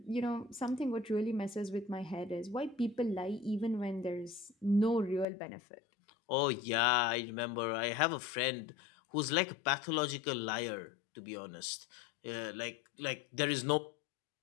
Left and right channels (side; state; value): right; drops out; at 5.2 s